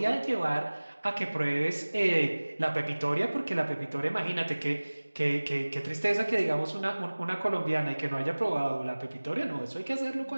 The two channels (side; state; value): both; inverted; correlation -1.00